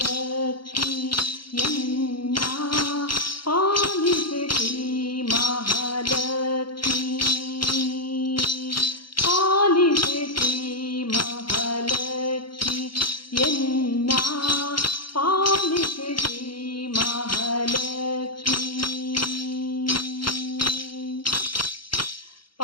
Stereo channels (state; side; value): late; right; 0.73 ms